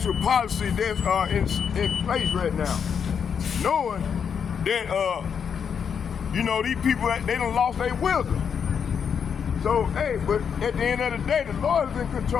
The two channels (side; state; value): right; quieter; 7.1 dB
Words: policy that's in place right now. Knowing that, you know, these people, they done lost their wisdom. So, hey, but at the end of the day, the Lord is in